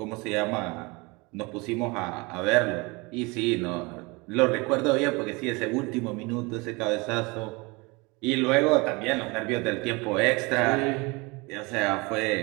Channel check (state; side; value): quieter; left; 26.4 dB